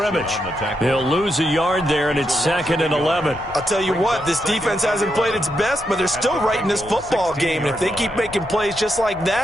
He'll lose a yard there, and it's second and 11. I'll tell you what, this defense hasn't played its best, but they're still right in this football game. And if they keep making plays just like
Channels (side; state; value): left; noise; rumble, 19 dB below the sound